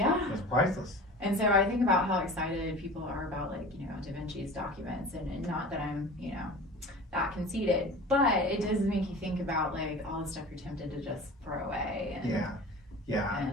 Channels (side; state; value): both; normal; correlation 0.37